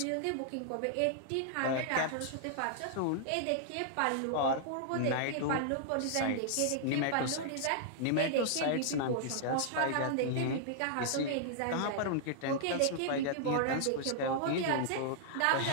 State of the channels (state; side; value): different; both; correlation -0.01